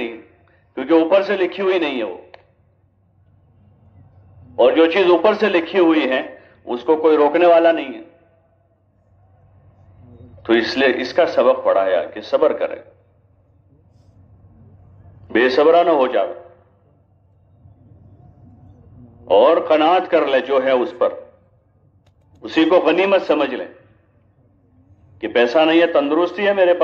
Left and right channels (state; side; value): identical; both; correlation 1.00